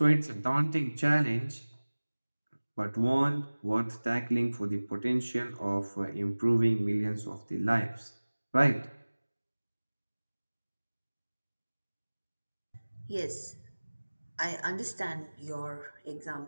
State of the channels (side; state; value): both; inverted; correlation -1.00